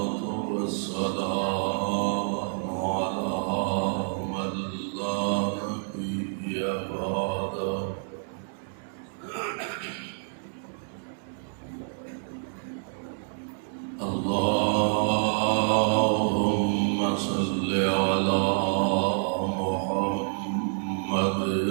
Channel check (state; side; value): silent; left; 59 dB below the other